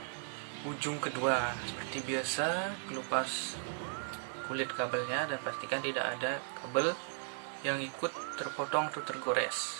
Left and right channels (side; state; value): left; silent; digital silence